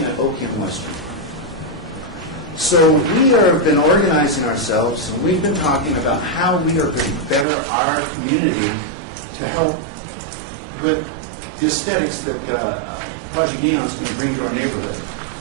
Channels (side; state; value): left; drops out; at 7.5 s